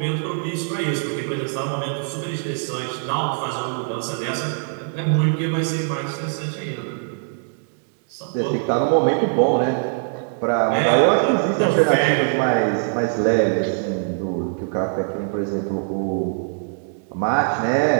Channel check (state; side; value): silent; left; digital silence